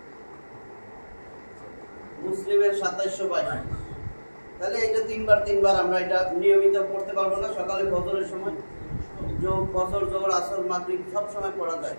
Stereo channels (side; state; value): both; inverted; correlation -1.00